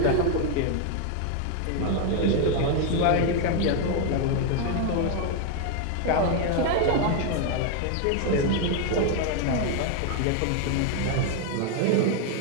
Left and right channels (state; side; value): different; both; correlation 0.01